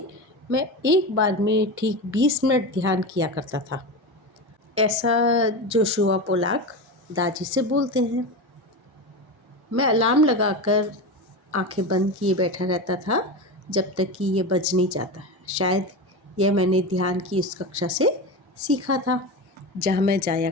मैं एक बार में ठीक 20 मिनट ध्यान किया करता था। ऐसा जोशुआ पोलाक दादी से बोलते हैं। मैं अलार्म लगाकर आंखें बंद किए बैठा रहता था जब तक कि ये बज नहीं जाता। शायद यह मैंने ध्यान की उस कक्षा से सीखा था जहाँ मैं जाया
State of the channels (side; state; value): both; normal; correlation 0.22